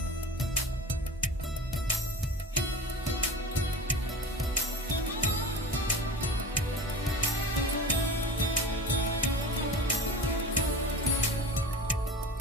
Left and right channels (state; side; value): normal; both; correlation 0.32